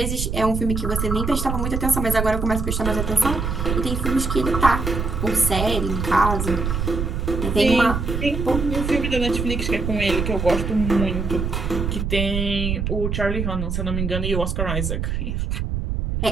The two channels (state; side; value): noise; right; rumble, 2 dB below the sound